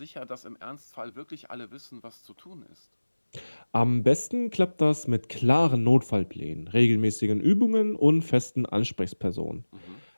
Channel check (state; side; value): inverted; both; correlation -1.00